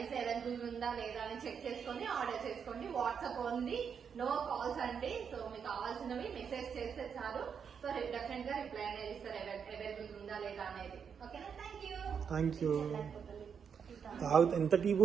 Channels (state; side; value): quieter; left; 6.9 dB